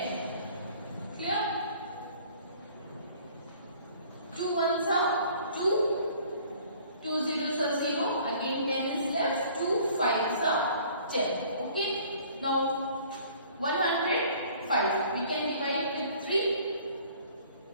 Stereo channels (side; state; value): both; inverted; correlation -0.53